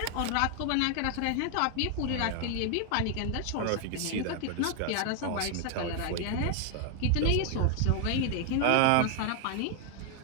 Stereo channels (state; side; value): different; both; correlation 0.00